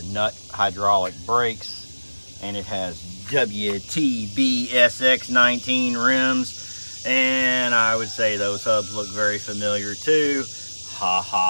nut hydraulic brakes, and it has WTB SX19 rims, and I would say those hubs look very familiar too. Ha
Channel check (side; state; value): both; inverted; correlation -1.00